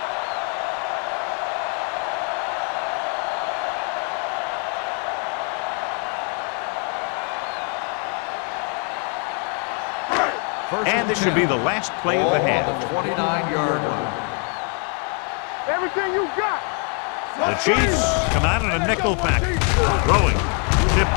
And this should be the last play of the half. 29-yard line. Everything you got. The Chiefs come out in a nickel package. Throwing. Tip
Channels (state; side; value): quieter; right; 38.1 dB